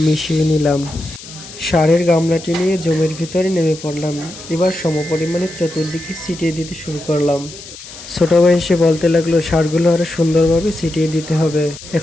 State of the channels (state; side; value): noise; left; hiss, 15 dB below the sound